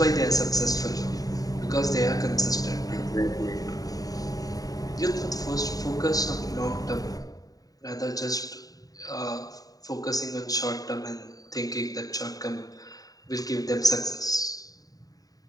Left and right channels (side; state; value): right; late; 0.18 ms